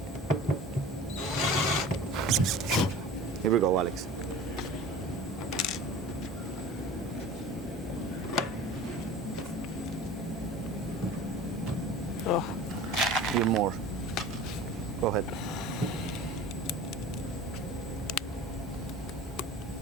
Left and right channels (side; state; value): both; normal; correlation 0.40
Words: Here we go, Alex. Oh, Few more. Go ahead.